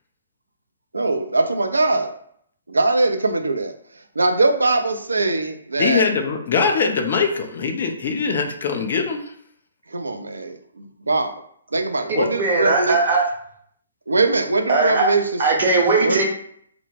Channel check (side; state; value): both; inverted; correlation -0.63